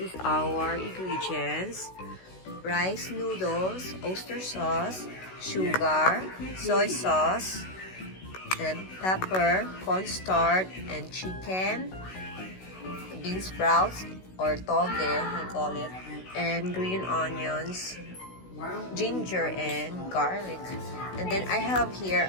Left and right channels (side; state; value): right; late; 16 ms